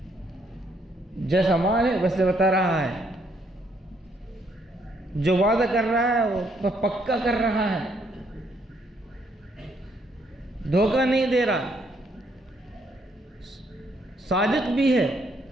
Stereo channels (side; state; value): both; normal; correlation 0.71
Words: جیسا مال ہے ویسے بتا رہا ہے، جو وعدہ کر رہا ہے وہ پکا کر رہا ہے، دھوکہ نہیں دے رہا، صادق بھی ہے،